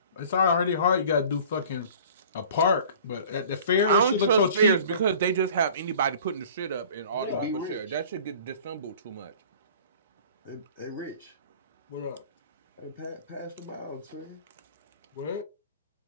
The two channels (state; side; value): inverted; both; correlation -0.46